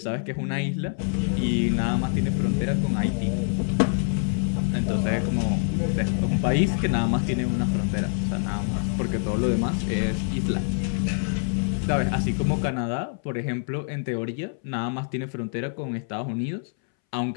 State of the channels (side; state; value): right; silent; 61 dB below the other